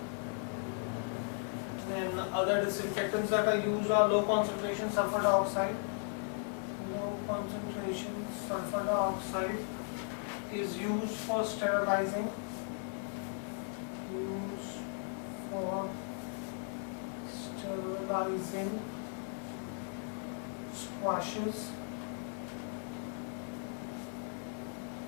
Then other disinfectants that are used are low concentration sulfur dioxide. Low concentration sulfur dioxide is used for sterilizing. For sterilizing squashes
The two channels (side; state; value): right; silent; 53 dB below the other